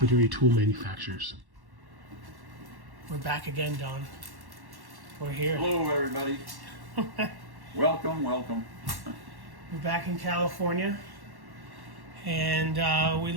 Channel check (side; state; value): left; late; 1.1 ms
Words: tool manufacturers. We're back again, Don. We're here. Hello, everybody. Welcome. We're back in California, and we